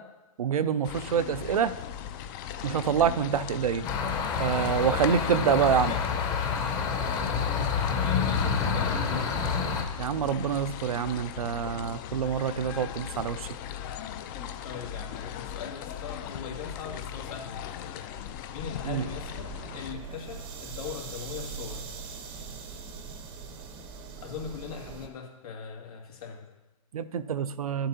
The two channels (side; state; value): both; normal; correlation -0.06